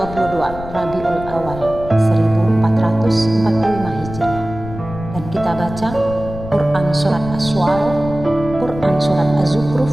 Rabiul Awal 1445 Hijriah, dan kita baca Quran Surat Asy-Syu'ara, Quran Surat Az-Zukhruf,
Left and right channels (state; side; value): noise; left; rumble, 11 dB below the sound